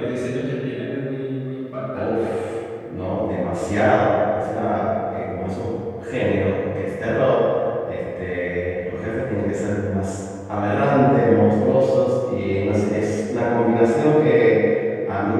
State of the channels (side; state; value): both; identical; correlation 1.00